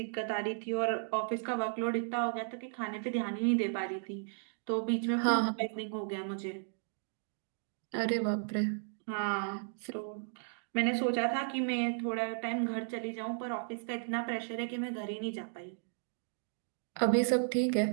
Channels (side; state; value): left; silent; digital silence